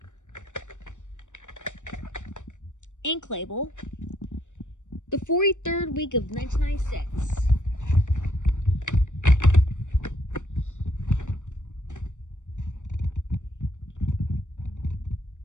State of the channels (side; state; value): right; late; 0.85 ms